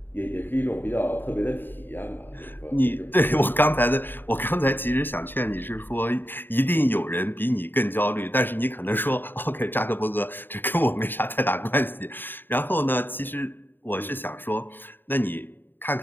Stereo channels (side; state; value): right; late; 0.094 ms